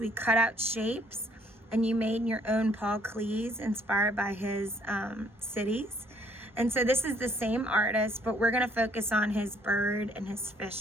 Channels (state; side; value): normal; both; correlation 0.64